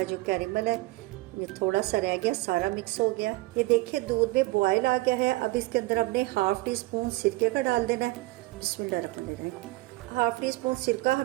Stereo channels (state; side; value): quieter; left; 20.9 dB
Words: जो कैरेमल है ये थोड़ा सा रह गया, सारा मिक्स हो गया। ये देखिए दूध में बॉयल आ गया है। अब इसके अंदर हमने ½ टी स्पून सिरके का डाल देना है। बिस्मिल्लाहिर्रहमानिर्रहीम। ½ टी स्पून सिरका